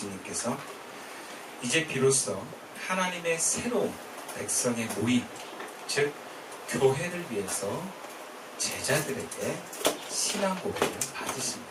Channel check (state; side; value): identical; both; correlation 1.00